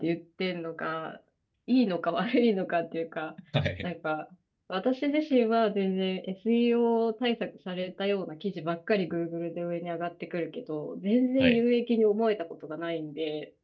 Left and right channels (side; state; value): both; identical; correlation 1.00